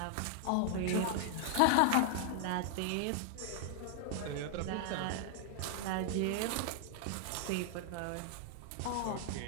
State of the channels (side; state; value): both; different; correlation 0.00